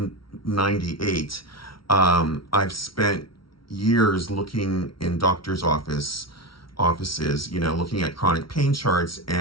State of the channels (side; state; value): right; late; 0.74 ms